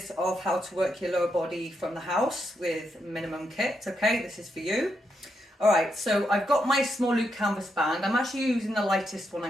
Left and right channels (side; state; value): both; normal; correlation 0.82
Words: of how to work your lower body from the house with minimum kit, okay, this is for you. All right, so I've got my small loop canvas band. I'm actually using the lightest one